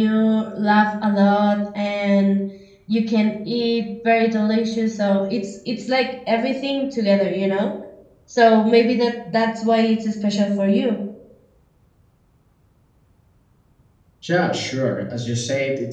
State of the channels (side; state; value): both; identical; correlation 1.00